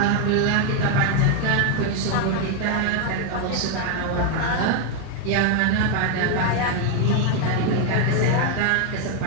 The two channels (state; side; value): different; both; correlation 0.01